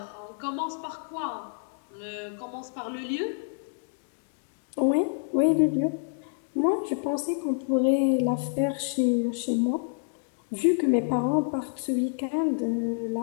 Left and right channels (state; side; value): silent; right; digital silence